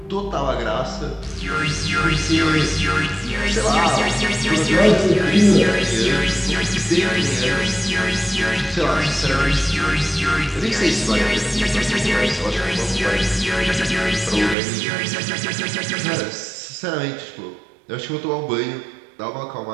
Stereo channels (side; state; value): left; drops out; at 14.6 s